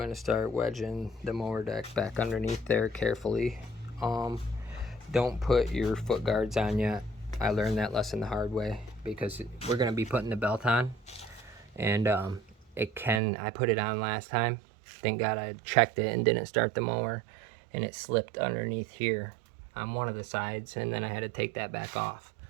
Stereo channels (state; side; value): drops out; left; at 13.2 s